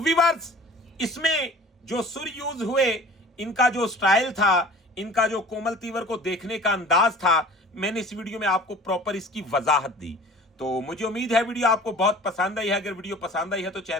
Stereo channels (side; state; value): both; normal; correlation 0.45